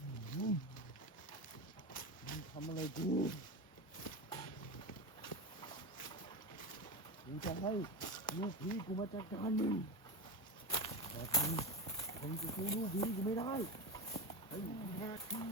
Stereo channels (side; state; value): both; normal; correlation 0.18